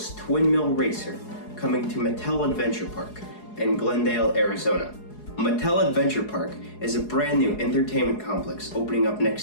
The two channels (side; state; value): right; late; 4.8 ms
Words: Twin Mill Racer coming to Mattel Adventure Park in Glendale, Arizona. Mattel Adventure Park is a brand new entertainment complex opening up